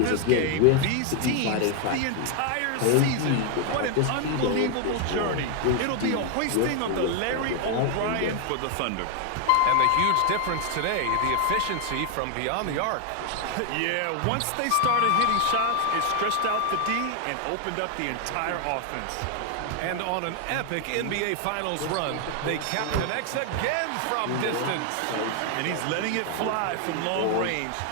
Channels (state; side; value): different; both; correlation 0.00